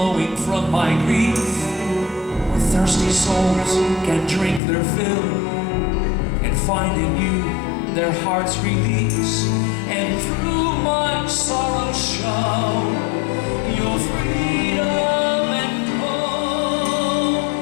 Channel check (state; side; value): drops out; right; at 4.6 s